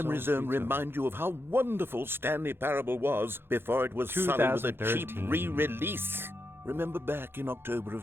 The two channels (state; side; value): late; left; 0.11 ms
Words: So Zone sweet, remind you of how wonderful Stanley Parable was before it was sullied with a cheap 2013. re-release? Remember back in October